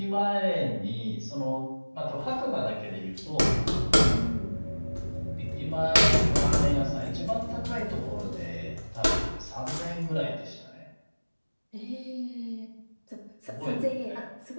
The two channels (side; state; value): both; inverted; correlation -1.00